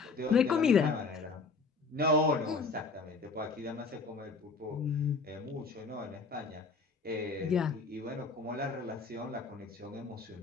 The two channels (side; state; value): right; quieter; 4.2 dB